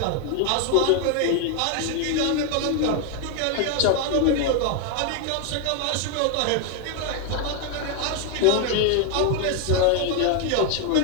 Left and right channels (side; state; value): both; different; correlation 0.00